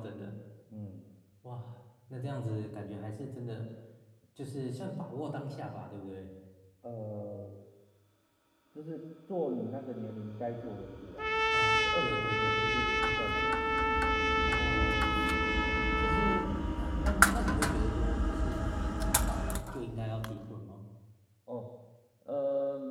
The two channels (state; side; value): identical; both; correlation 1.00